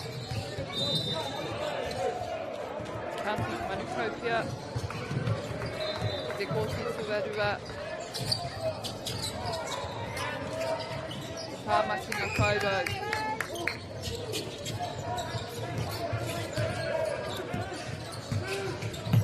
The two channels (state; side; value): identical; both; correlation 1.00